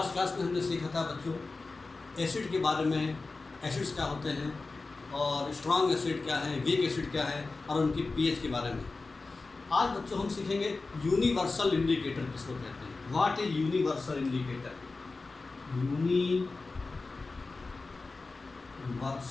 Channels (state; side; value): quieter; right; 3.7 dB